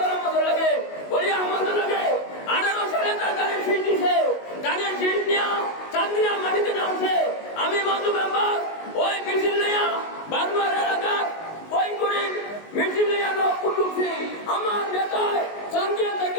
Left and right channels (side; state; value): right; late; 19 ms